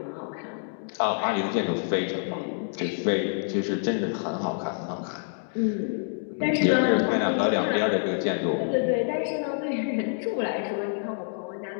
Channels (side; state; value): right; silent; digital silence